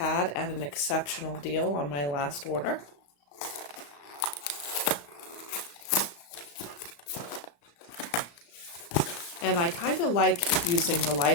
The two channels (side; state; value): right; late; 35 ms